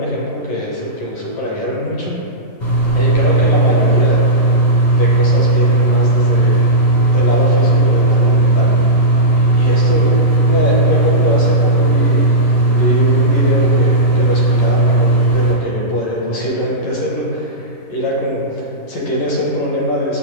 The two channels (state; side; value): late; right; 11 ms